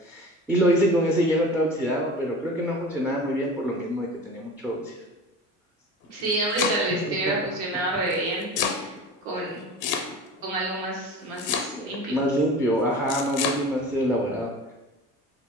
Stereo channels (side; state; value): both; normal; correlation 0.36